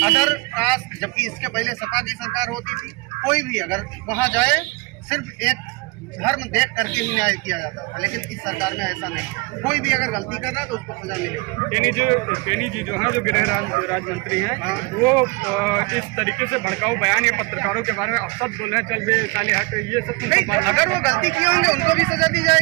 अदर कास्ट, जबकि इसके पहले सपा की सरकार होती थी, कोई भी अगर वहाँ जाए सिर्फ एक धर्म देख करके ही न्याय किया जाता था, लेकिन इस सरकार में ऐसा नहीं है। कोई भी अगर गलती कर रहा है तो उसको सजा मिलेगी। टेनी जी जो है, जो गृह राज्य मंत्री हैं, वो इस तरीके से भड़काऊ बयान या पत्रकारों के बारे में अब सब बोल रहे हैं चल बे साले हट, ये सब नहीं। अगर वो गलती किए होंगे उनको भी सजा दी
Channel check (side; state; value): left; quieter; 27.2 dB